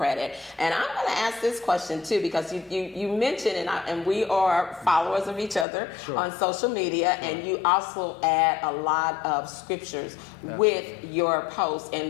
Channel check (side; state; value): right; drops out; at 5.7 s